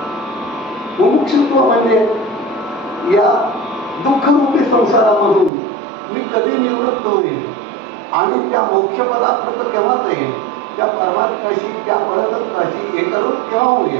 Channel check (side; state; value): left; drops out; at 5.5 s